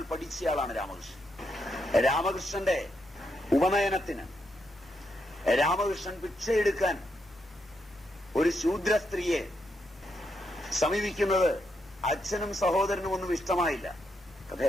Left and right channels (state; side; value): normal; both; correlation 0.81